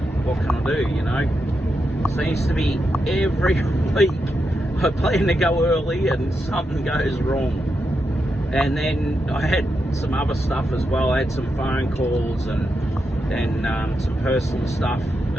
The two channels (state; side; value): normal; both; correlation 0.85